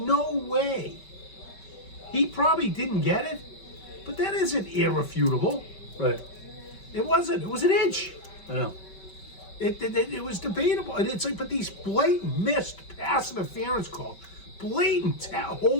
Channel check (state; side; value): late; right; 5.3 ms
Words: way. He probably didn't get it, but that isn't irrefutable. Right. It wasn't. It was an inch. I know. It was debatable. And it's like, but these blatant missed pass interference calls, blatant